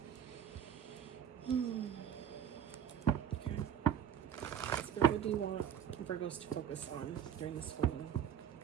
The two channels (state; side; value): quieter; left; 9.2 dB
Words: Okay, Spirit, what do you want Virgos to focus on during this full moon?